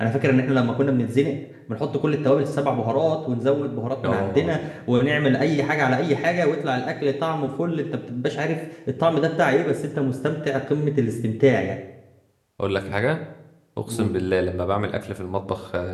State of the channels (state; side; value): identical; both; correlation 1.00